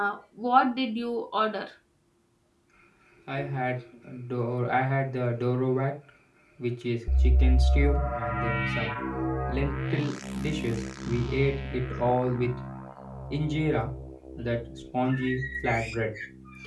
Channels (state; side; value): identical; both; correlation 1.00